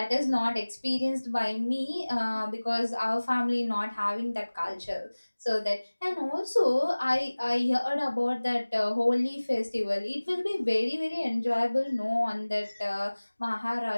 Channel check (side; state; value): both; inverted; correlation -1.00